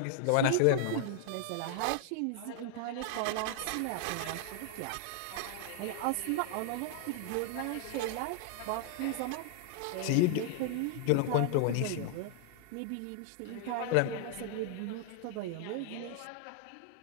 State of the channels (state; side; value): different; both; correlation 0.00